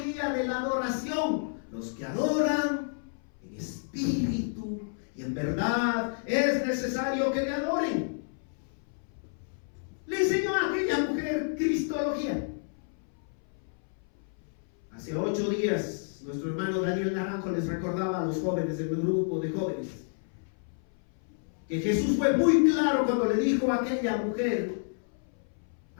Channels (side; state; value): right; silent; 58 dB below the other